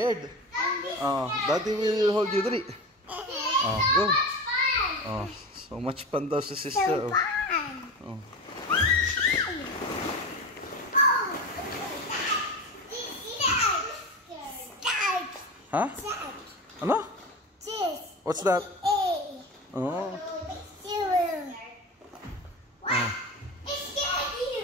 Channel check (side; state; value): both; normal; correlation 0.27